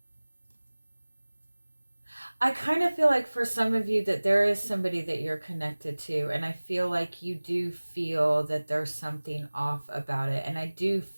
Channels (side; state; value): both; inverted; correlation -1.00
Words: I kind of feel like for some of you that there is somebody that you're connected to, and I feel like you do feel that there's something off about it, and I do